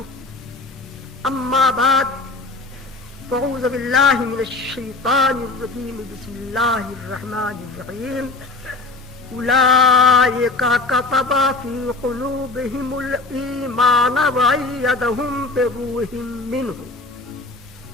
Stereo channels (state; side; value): quieter; right; 3.6 dB